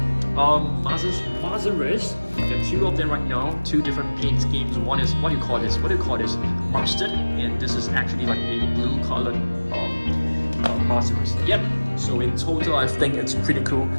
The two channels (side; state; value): both; inverted; correlation -1.00